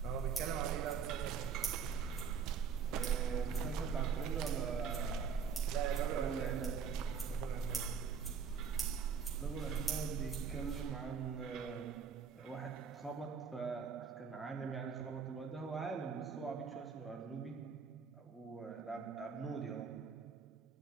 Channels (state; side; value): quieter; left; 6.3 dB